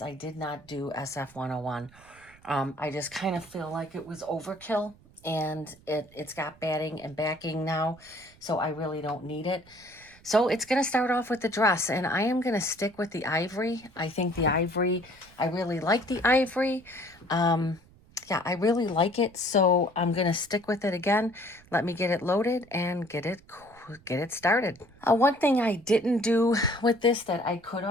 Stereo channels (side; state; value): right; noise; rumble, 26 dB below the sound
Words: I did not do SF 101. I just kind of feel like it was overkill, and it's got batting and backing now. So I really don't need it. So it's going to start off with the dress, and I am going to stick with the ivory. I think the ivory, I really like the ivory. Yeah, I really like it, so I'm going to stick with it again. Let me get it loaded and get it started. One thing I didn't do with this that I could